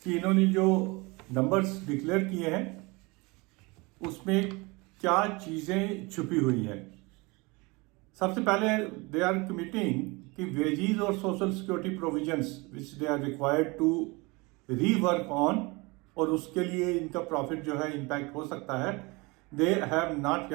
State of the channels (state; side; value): quieter; left; 25.9 dB